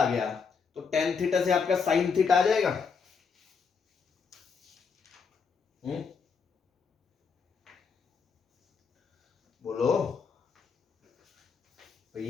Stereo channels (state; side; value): quieter; right; 5.6 dB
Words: गया तो टेन थीटा से आपका साइन थीटा आ जाएगा। बोलो